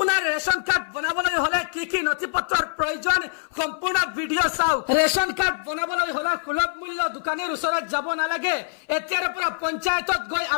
ৰেশন কাৰ্ড বনাবলৈ হলে কি কি নথিপত্ৰৰ প্ৰয়োজন সম্পূৰ্ণ ভিডিও চাওক। ৰেশন কাৰ্ড বনাবলৈ হলে সুলভ মূল্য দোকানীৰ ওচৰত যাব নালাগে। এতিয়াৰ পৰা পঞ্চায়তত গৈ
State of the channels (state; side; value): silent; right; 58 dB below the other